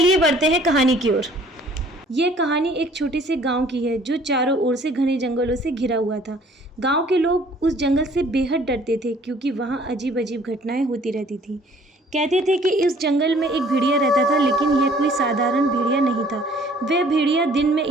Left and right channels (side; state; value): both; normal; correlation 0.56